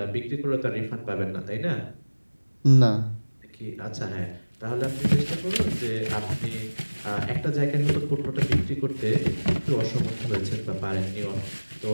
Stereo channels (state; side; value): inverted; both; correlation -1.00